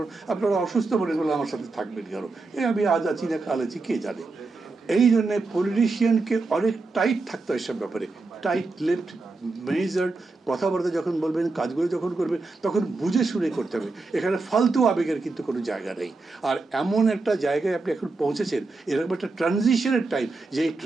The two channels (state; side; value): quieter; left; 3.6 dB